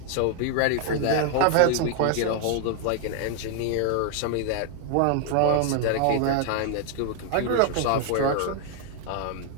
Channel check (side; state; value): both; different; correlation 0.00